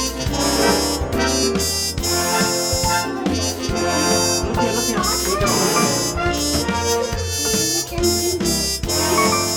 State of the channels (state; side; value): identical; both; correlation 1.00